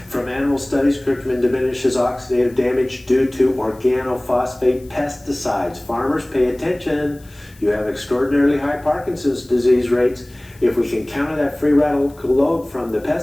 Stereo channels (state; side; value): noise; left; hiss, 27 dB below the sound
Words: From animal studies, curcumin diminishes oxidative damage due to organophosphate pesticides. Farmers, pay attention. You have extraordinarily high Parkinson's disease rates. If we can counter that free radical load from the